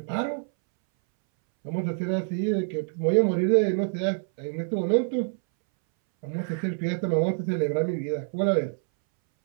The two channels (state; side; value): silent; left; 61 dB below the other